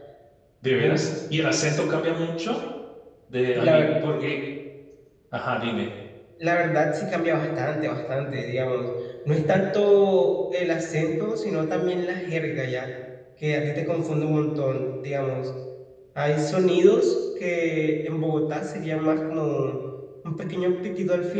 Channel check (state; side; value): identical; both; correlation 1.00